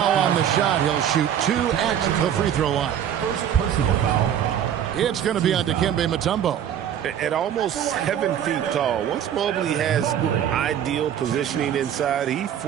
on the shot. He'll shoot 2 at the free throw line. First personal foul. It's going to be on Dikembe Mutombo. At almost 7 feet tall, once Mobley has ideal positioning inside, he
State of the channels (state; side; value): quieter; left; 9.7 dB